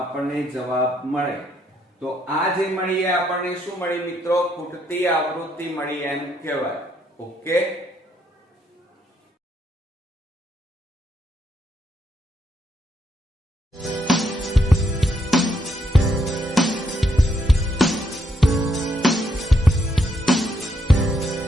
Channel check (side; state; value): both; normal; correlation 0.76